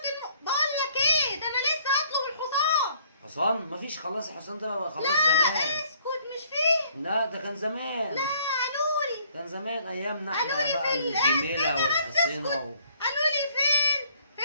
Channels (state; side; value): inverted; both; correlation -0.62